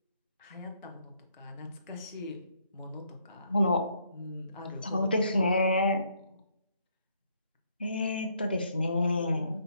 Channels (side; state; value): both; inverted; correlation -0.70